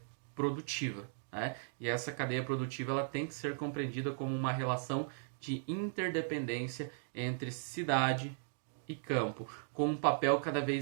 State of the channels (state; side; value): silent; left; digital silence